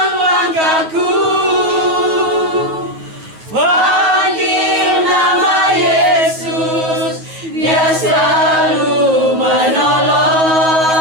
langkahku, panggil nama Yesus, Dia selalu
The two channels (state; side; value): late; left; 9.4 ms